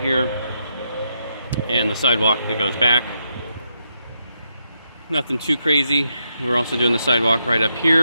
and the sidewalk that goes back. Nothing too crazy. We're also doing the sidewalk right up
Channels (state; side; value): inverted; both; correlation -0.80